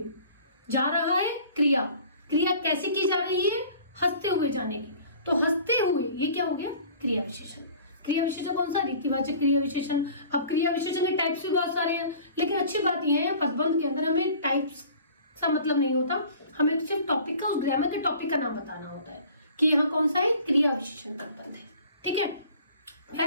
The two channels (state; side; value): inverted; both; correlation -0.47